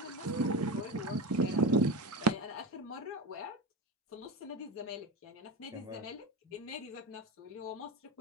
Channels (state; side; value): normal; both; correlation 0.22